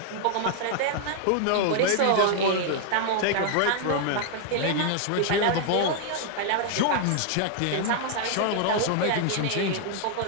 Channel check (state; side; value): different; both; correlation 0.00